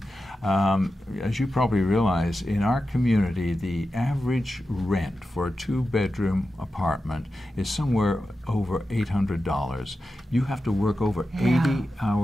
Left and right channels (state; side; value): normal; both; correlation 0.91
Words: As you probably realize, in our community, the average rent for a 2-bedroom apartment is somewhere over $800. You have to work over 80